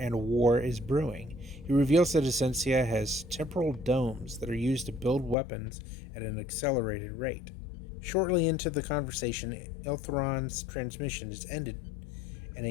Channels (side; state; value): right; drops out; at 5.4 s